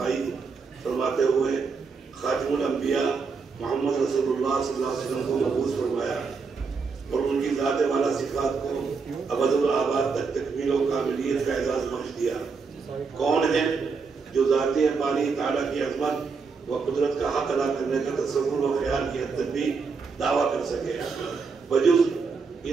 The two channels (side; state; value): left; quieter; 5.0 dB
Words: فرماتے ہوئے خاتم الانبیاء محمد رسول اللہ صلی اللہ علیہ وسلم کو مبعوث فرمایا اور ان کی ذات والا صفات کو ابد الآباد تک تکمیل و کاملیت کا اعزاز بخش دیا۔ کون ہے جو ذاتی باری تعالیٰ کی عظمت و قدرت کا حق ادا کرنے کا تصور و خیال کی حد تک بھی دعویٰ کر سکے بجز